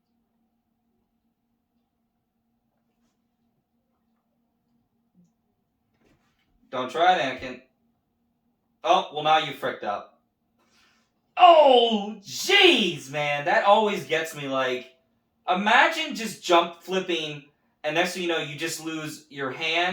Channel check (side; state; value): both; identical; correlation 1.00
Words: Don't try it, Anakin. Oh, well now you fricked up. Oh, jeez, man. That always gets me, like, imagine just jump flipping, and next thing you know, you just lose your